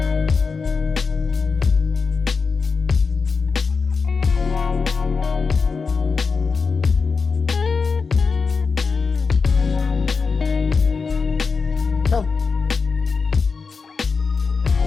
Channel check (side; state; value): right; quieter; 4.9 dB